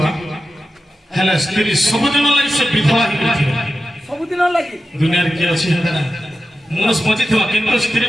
ହେଲେ ସ୍ତ୍ରୀ ସବୁଦିନ ଲାଗି ସେ ବିଧବା ହେଇଥିବ ସବୁଦିନ ଲାଗି ଦୁନିଆରେ କିଏ ଅଛି ମଣିଷ ବଞ୍ଚିଥିବା କିନ୍ତୁ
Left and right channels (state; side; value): normal; both; correlation 0.92